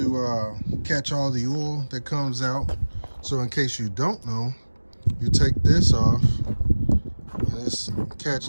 catch all the oil that comes out. So in case you don't know, you take this off, and this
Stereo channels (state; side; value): inverted; both; correlation -1.00